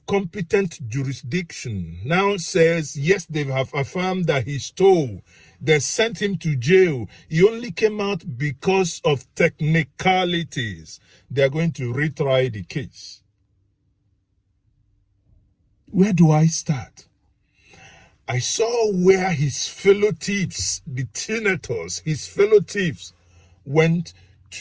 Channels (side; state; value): both; identical; correlation 1.00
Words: competent jurisdiction now says, yes, they have affirmed that he stole. They sent him to jail. He only came out because of technicalities. They are going to retry the case. Where do I start? I saw where his fellow thieves, the senators, his fellow thieves, went